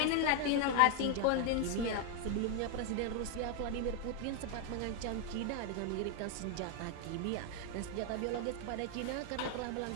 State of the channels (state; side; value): different; both; correlation 0.00